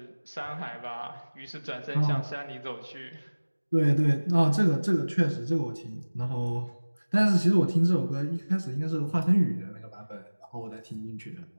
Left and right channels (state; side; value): inverted; both; correlation -1.00